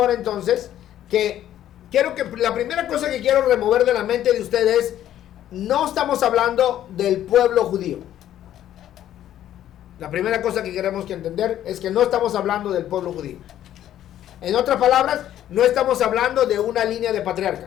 entonces que la primera cosa que quiero remover de la mente de ustedes, no estamos hablando del pueblo judío. La primera cosa que queremos que entender es que no estamos hablando del pueblo judío. En otras palabras, no estamos hablando de una línea de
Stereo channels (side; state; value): right; quieter; 11.8 dB